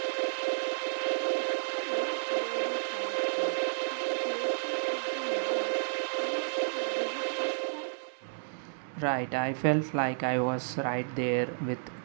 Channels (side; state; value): left; silent; digital silence